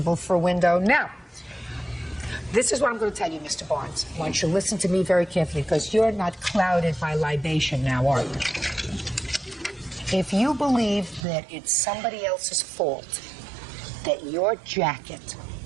for a window. Now, this is what I'm going to tell you, Mr. Barnes. I want you to listen to me very carefully, because you're not clouded by libation now, are you? If you believe that it's somebody else's fault that your jacket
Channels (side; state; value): left; drops out; at 11.2 s